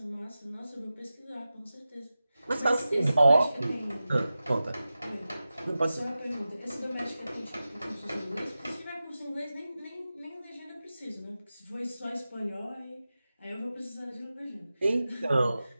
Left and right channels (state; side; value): inverted; both; correlation -0.94